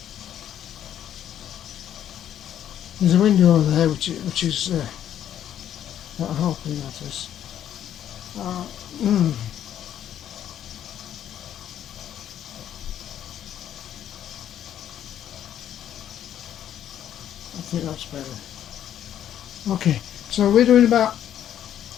There's a window over there which is not helping, that is. I think that's better. Okay, so we're doing about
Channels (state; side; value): quieter; right; 10.6 dB